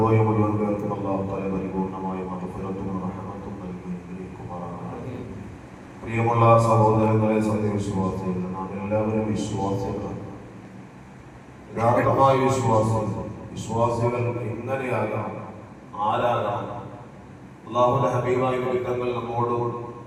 മുഴുവൻ പേർക്കും അല്ലാഹു തആല പരിപൂർണമായ മഗ്ഫിറത്തും റഹ്മത്തും നൽകി അനുഗ്രഹിക്കുമാറാകട്ടെ. പ്രിയമുള്ള സഹോദരങ്ങളെ, സത്യവിശ്വാസികൾ, നാം എല്ലാവരും വിശ്വാസികളാണ്. യഥാർത്ഥമായ വിശ്വാസികൾ എങ്ങനെയാകാം, ആരാകാം? അല്ലാഹുവിന്റെ ഹബീബായ വിരുദ്ധങ്ങൾ നമ്മോട്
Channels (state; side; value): identical; both; correlation 1.00